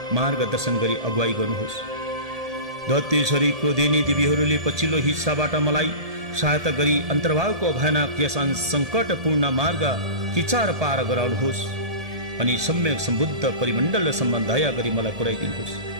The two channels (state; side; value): late; left; 1.7 ms